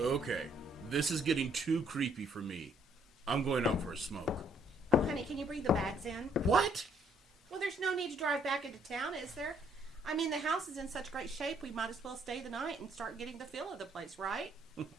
Okay, this is getting too creepy for me. I'm going out for a smoke. Oh, honey, can you bring the bags in? What? Well, there's no need to drive back into town, is there? I mean, the house is in such great shape, we might as well stay the night and start getting the feel of the place, right?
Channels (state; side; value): normal; both; correlation 0.67